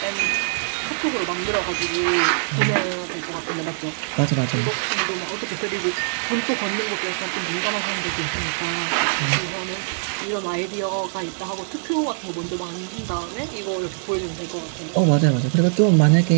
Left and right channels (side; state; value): left; silent; digital silence